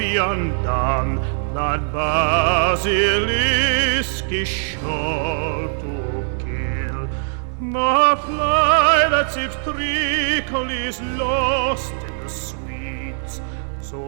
undone, that basilisk is sure to kill. The fly that sips treacle is lost in the sweets,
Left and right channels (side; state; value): left; silent; 62 dB below the other